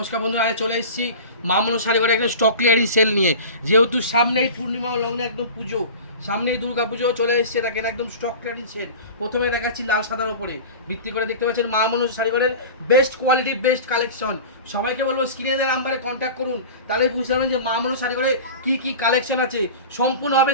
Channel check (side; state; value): both; inverted; correlation -0.34